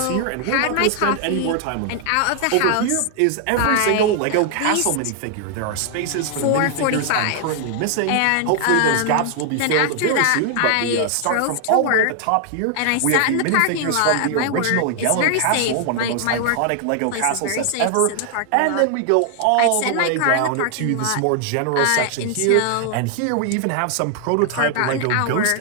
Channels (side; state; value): both; different; correlation 0.00